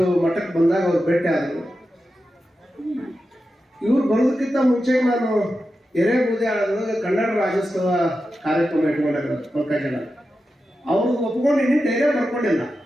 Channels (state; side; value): normal; both; correlation 0.91